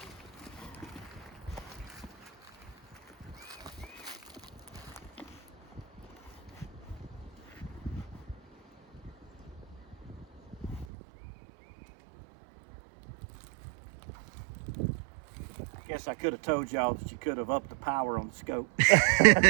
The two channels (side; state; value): left; drops out; at 10.9 s